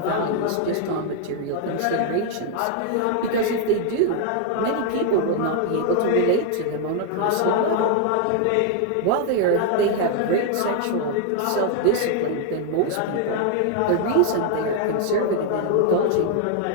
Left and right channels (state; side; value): different; both; correlation 0.00